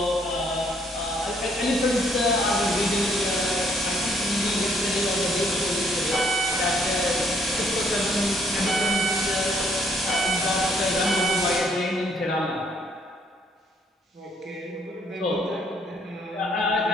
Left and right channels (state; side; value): normal; both; correlation 0.66